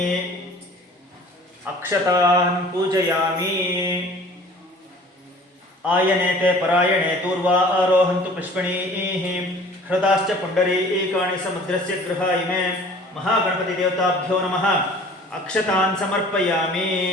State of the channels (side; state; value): both; normal; correlation 0.48